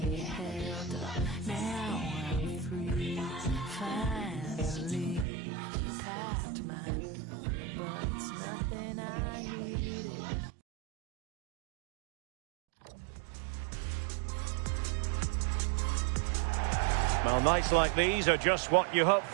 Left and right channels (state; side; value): drops out; left; at 5.2 s